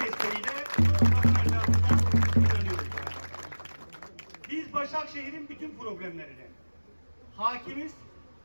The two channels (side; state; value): both; inverted; correlation -1.00